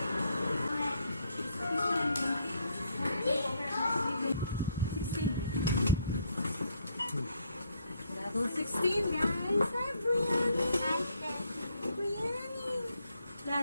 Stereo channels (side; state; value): both; inverted; correlation -0.71